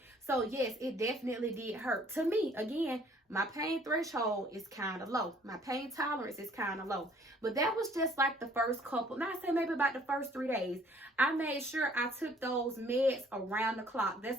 So yes, it definitely did hurt. To me, again, my pain threshold is kind of low. My pain tolerance is kind of low. But that was just like the first couple, not say maybe about the first 3 days. I made sure I took those meds around the clock.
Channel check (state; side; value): normal; both; correlation 0.58